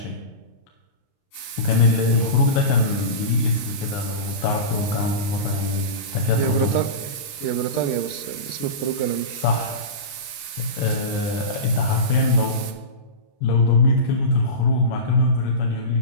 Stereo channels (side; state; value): right; late; 29 ms